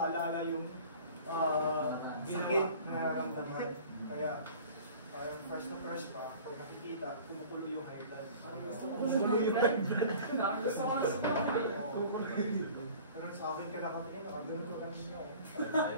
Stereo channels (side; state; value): both; inverted; correlation -0.45